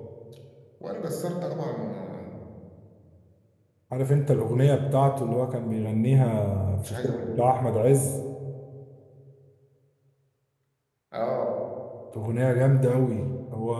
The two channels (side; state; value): both; identical; correlation 1.00